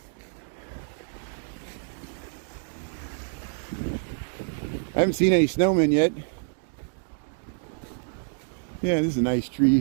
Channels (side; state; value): left; silent; digital silence